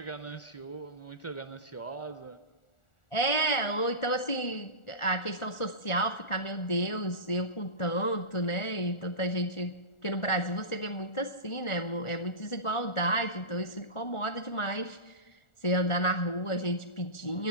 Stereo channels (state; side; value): late; right; 1.4 ms